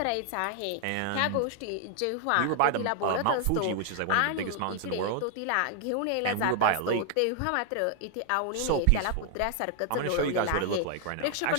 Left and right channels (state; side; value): different; both; correlation 0.00